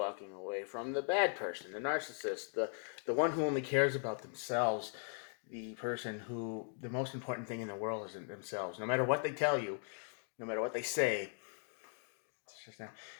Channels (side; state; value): right; silent; 52 dB below the other